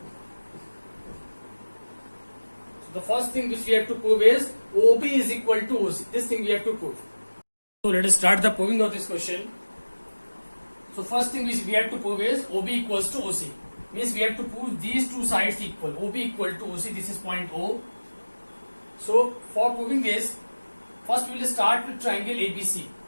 So the first thing which we have to prove is OB is equal to OC. This thing we have to prove. So let us start the proving of this question. So first thing which we have to prove is OB equals to OC. Means we have to prove these two sides equal. OB equal to OC. This is point O. So for proving this, first we will start with triangle ABC.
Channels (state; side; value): inverted; both; correlation -1.00